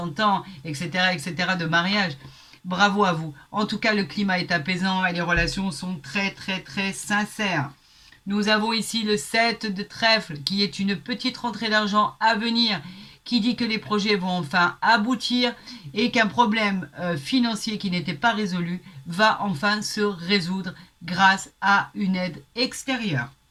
ans, etc. de mariage. Bravo à vous. En tout cas, le climat est apaisant et les relations sont très, très, très sincères. Nous avons ici le 7 de trèfle qui est une petite rentrée d'argent à venir qui dit que les projets vont enfin aboutir et qu'un problème financier qui n'était pas résolu va enfin se résoudre grâce à une aide extérieure.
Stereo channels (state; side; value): identical; both; correlation 1.00